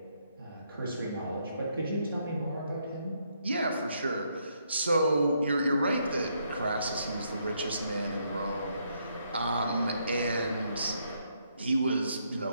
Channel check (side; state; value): both; inverted; correlation -0.75